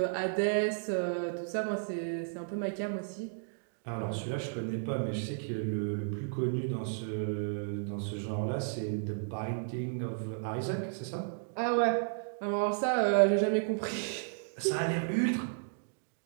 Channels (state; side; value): silent; left; digital silence